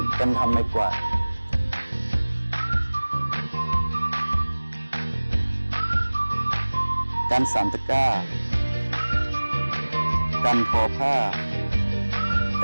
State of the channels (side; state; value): both; inverted; correlation -1.00